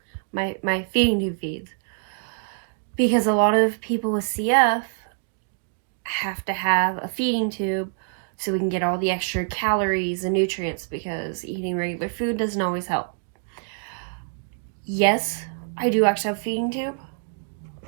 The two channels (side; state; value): left; silent; digital silence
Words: my feeding tube feeds. Because a lot of people with CF have to have a feeding tube so we can get all the extra calories and nutrients, because eating regular food doesn't always help. Yes, I do actually have a feeding tube.